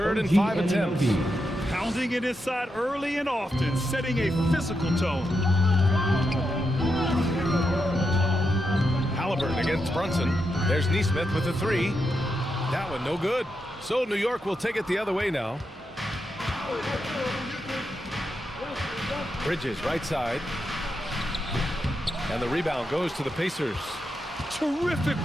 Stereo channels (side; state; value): both; normal; correlation 0.85